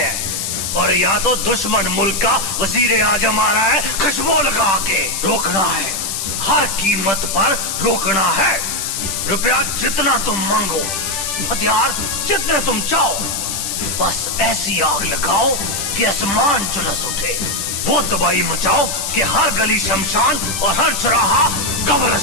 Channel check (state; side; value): noise; left; hiss, 3 dB below the sound